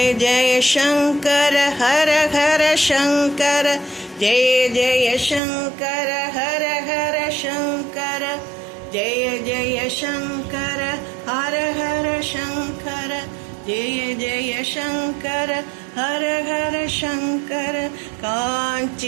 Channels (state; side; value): drops out; left; at 5.4 s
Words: जय शंकर हर हर शंकर, जय जय शंकर हर हर शंकर, जय जय शंकर हर हर शंकर, जय जय शंकर हर हर शंकर।